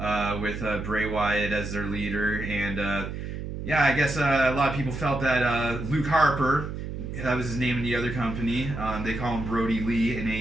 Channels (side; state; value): right; noise; hum, 6 dB below the sound